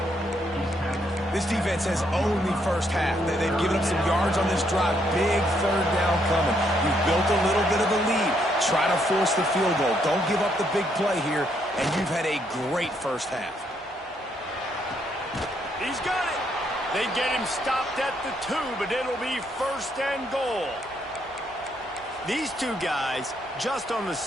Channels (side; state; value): both; normal; correlation 0.73